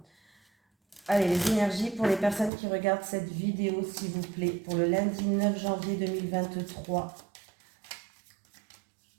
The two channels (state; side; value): drops out; left; at 2.5 s